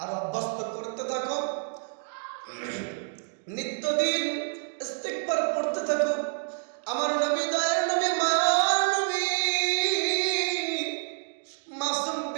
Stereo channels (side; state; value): left; silent; 59 dB below the other